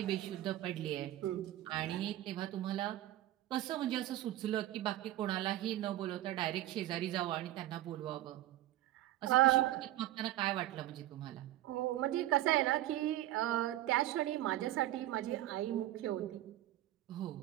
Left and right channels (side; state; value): left; quieter; 14.6 dB